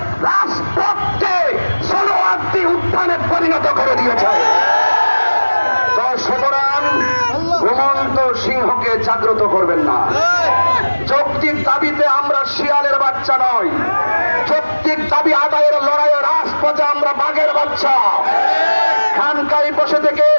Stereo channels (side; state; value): both; inverted; correlation -1.00